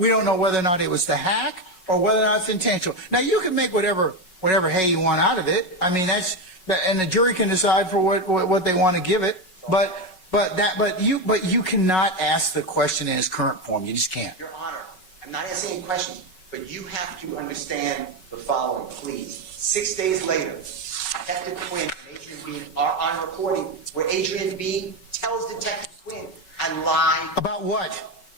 don't know whether or not it was the hack or whether or not it's intentional. Now, you can make whatever hay you want out of it. I mean, and the jury can decide for what they want to give it. But you cannot ask the question in its current form. You just can't. Your Honor, I'm not asking any questions, but you have to understand the following, please. 6 days later, Detective Quinn and Adrian Bean are on recording where Adrian Bean tells Detective Quinn, "I lied." About what?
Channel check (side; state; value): right; late; 5.3 ms